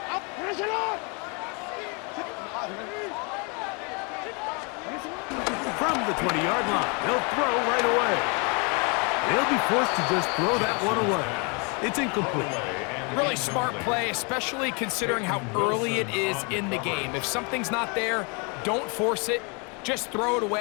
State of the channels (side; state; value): right; quieter; 33.2 dB